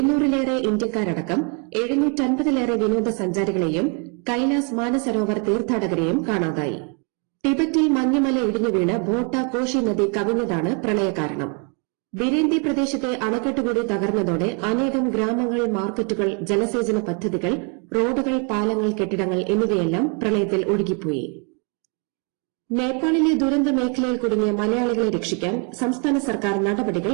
ഇന്ത്യക്കാരടക്കം 750-ലേറെ വിനോദസഞ്ചാരികളെയും കൈലാസ് മാനസരോവർ തീർത്ഥാടകരെയും കാണാതായി. ടിബറ്റിൽ മഞ്ഞുമല ഇടിഞ്ഞുവീണ് ഭോട്ട കോഷി നദി കവിഞ്ഞതാണ് പ്രളയകാരണം. ബിരേന്തി പ്രദേശത്തെ അണക്കെട്ടുകൂടി തകർന്നതോടെ അനേകം ഗ്രാമങ്ങൾ, മാർക്കറ്റുകൾ, ജലസേചന പദ്ധതികൾ, റോഡുകൾ, പാലങ്ങൾ, കെട്ടിടങ്ങൾ എന്നിവയെല്ലാം പ്രളയത്തിൽ ഒഴുകിപ്പോയി. നേപ്പാളിലെ ദുരന്ത മേഖലയിൽ കുടുങ്ങിയ മലയാളികളെ രക്ഷിക്കാൻ സംസ്ഥാന സർക്കാർ നടപടികൾ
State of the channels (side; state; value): left; quieter; 36.9 dB